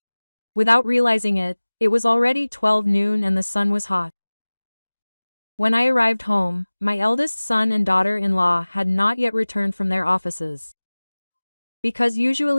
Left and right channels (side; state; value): both; inverted; correlation -1.00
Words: Without realizing it, it was already 12 noon and the sun was hot. When I arrived home, my eldest son and daughter-in-law had not yet returned from their offices. Because